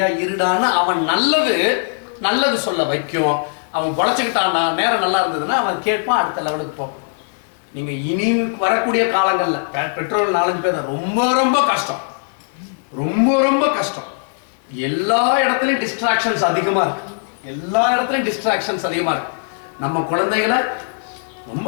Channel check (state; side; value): silent; right; digital silence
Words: இருடான்னு அவன் நல்லது சொல்ல வைக்கும். அவன் பொழைச்சிக்கிட்டான்னா நேரம் நல்லா இருந்ததுன்னா அவன் கேட்பான், அடுத்த லெவலுக்கு போவான். நீங்க இனி வரக்கூடிய காலங்கள்ல பெட்ரோல் 4-5 பேர் ரொம்ப ரொம்ப கஷ்டம், ரொம்ப கஷ்டம். எல்லா இடத்துலயும் டிஸ்ட்ராக்ஷன்ஸ் அதிகமா இருக்கு, எல்லா இடத்துலயும் டிஸ்ட்ராக்ஷன்ஸ் அதிகமா இருக்கு. நம்ம குழந்தைகளை